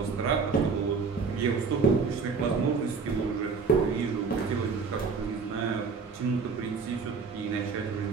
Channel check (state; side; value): quieter; left; 5.0 dB